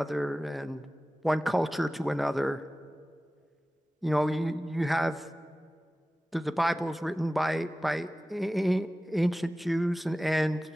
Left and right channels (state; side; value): normal; both; correlation 0.97